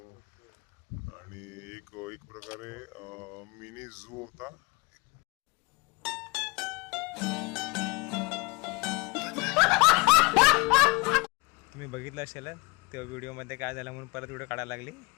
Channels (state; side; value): quieter; right; 27.6 dB